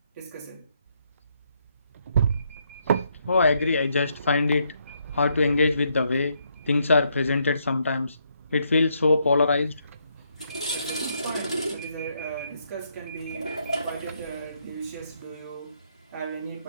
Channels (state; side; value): inverted; both; correlation -0.75